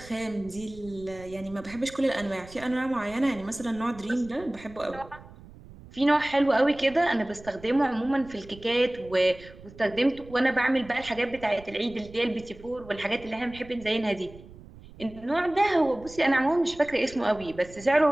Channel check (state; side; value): noise; right; rumble, 19 dB below the sound